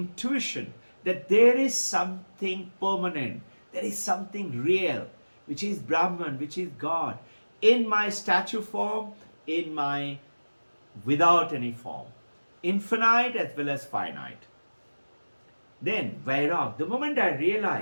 that there is something permanent, there is something real, which is Brahman, which is God, in my statue form, in my without any form, infinite as well as finite. Then Vairag, the moment I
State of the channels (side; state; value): both; inverted; correlation -1.00